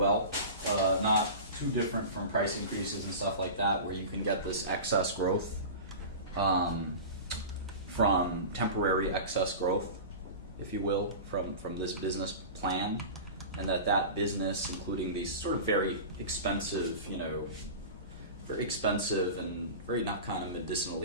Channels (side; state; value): both; inverted; correlation -0.31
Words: Not too different from price increases and stuff like that, where you can get this excess growth from temporary excess growth, if you will, from this business plan, and that business, including these sort of very expensive, and very not kind of